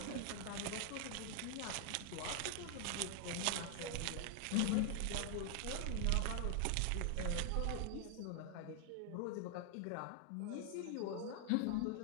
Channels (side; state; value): both; different; correlation 0.00